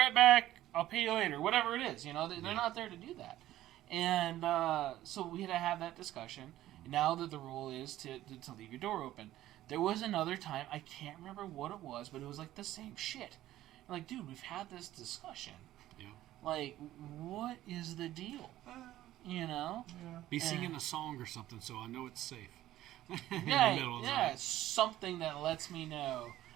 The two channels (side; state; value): left; quieter; 14.2 dB